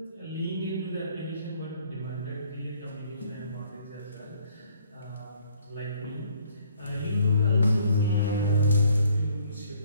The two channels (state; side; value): inverted; both; correlation -0.62